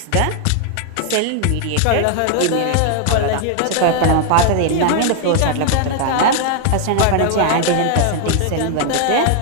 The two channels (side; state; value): both; different; correlation 0.00